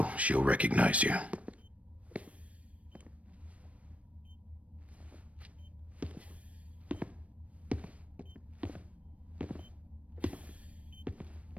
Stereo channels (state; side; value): late; left; 0.065 ms